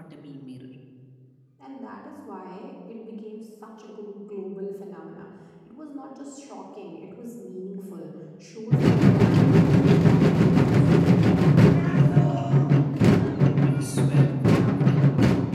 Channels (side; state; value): both; identical; correlation 1.00